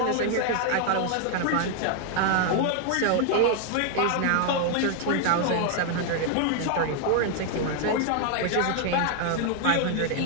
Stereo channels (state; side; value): different; both; correlation 0.00